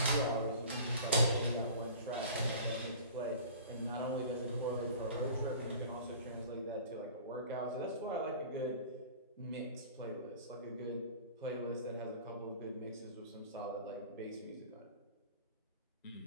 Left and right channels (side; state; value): both; inverted; correlation -0.43